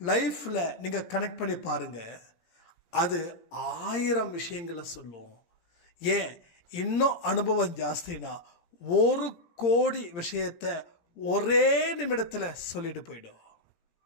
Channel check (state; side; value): late; right; 18 ms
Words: லைஃப்பில் நீங்கள் கனெக்ட் பண்ணி பாருங்கள். அது 1000 விஷயங்களை சொல்லும். ஏன் இன்னும் அனுபவம் ஜாஸ்தினா 1 கோடி விஷயத்தை ஒரே நிமிடத்தில் சொல்லிட்டு போயிடும்.